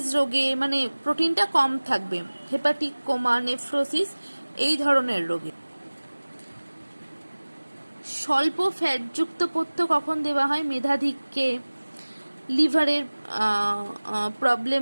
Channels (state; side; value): inverted; both; correlation -1.00